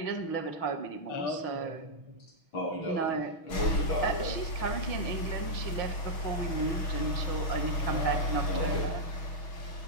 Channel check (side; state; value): right; late; 6.2 ms